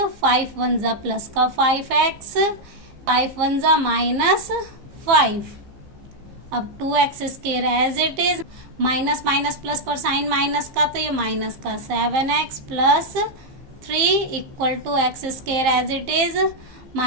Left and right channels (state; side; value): late; left; 15 ms